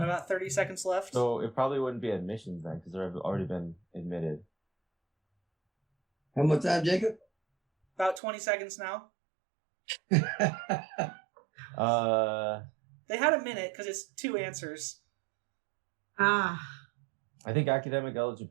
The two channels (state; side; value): drops out; left; at 8.2 s